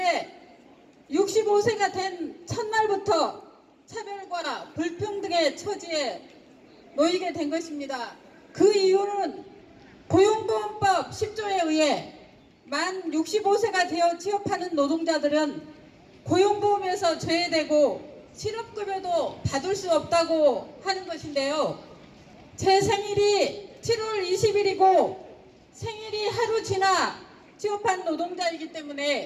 65세가 된 첫날부터 차별과 불평등의 처지에 놓이게 된 것입니다. 그 이유는 고용보험법 10조에 의해 만 65세가 되어 취업하는 노동자들은 고용보험에서 제외되고 실업급여도 받을 수 없다고 하는 것인데요. 제 생일이 7월 20일이고 생일이 하루 지나 취업한 노동자이기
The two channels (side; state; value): both; identical; correlation 1.00